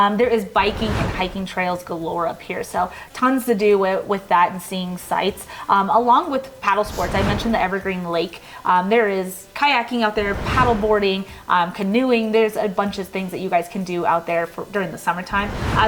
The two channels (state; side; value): identical; both; correlation 1.00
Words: is biking and hiking trails galore up here, so tons to do with that and seeing sights. Along with paddle sports, I mentioned the Evergreen Lake. There is kayaking out there, paddle boarding, canoeing. There's a bunch of things that you guys can do out there during the summertime,